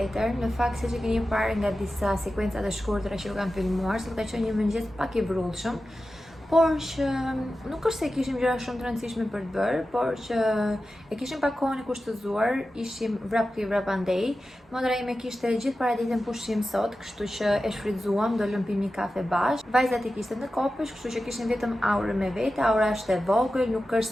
në fakt siç e keni parë nga disa sekuencat e shkurtra që u kam filmuar, sot ka qenë një mëngjes pak i vrrullshëm, por që nuk është se kishim gjëra shumë të rëndësishme për të bërë, por që e kishim pak kohën e kushtëzuar, ishim vrap këtu vrap andej. Motra ime kishte gjithë paraditën pushim sot, kështu që e shfrytzuam, do lëm pim një kafe bashkë. Vajzat i kishte në kopësh, kështu që kishim vetëm aurën me vete. Aura është e vogël, nuk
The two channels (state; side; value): normal; both; correlation 0.93